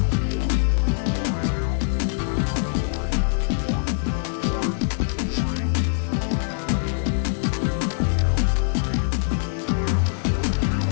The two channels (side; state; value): right; silent; digital silence